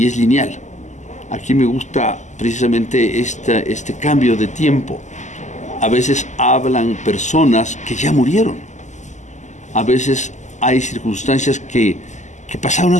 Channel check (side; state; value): right; late; 0.34 ms